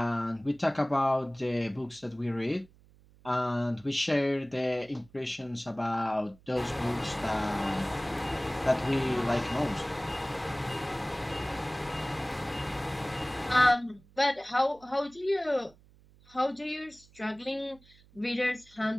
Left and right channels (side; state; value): right; noise; hum, 27 dB below the sound